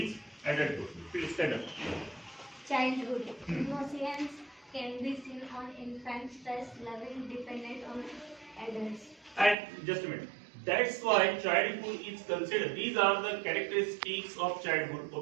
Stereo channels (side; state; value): left; drops out; at 9.6 s